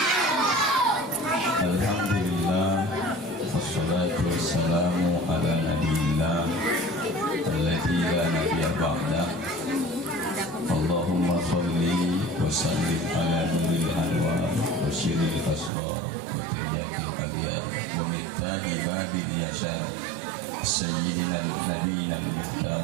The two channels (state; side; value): drops out; left; at 15.7 s